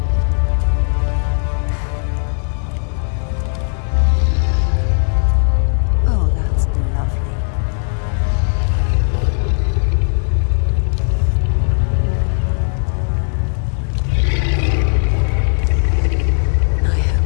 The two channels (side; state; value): right; silent; digital silence